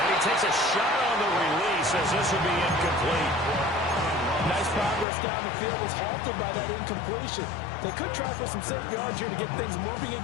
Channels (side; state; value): right; drops out; at 5.1 s